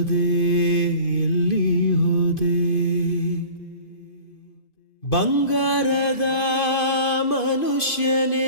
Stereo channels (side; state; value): right; late; 2.5 ms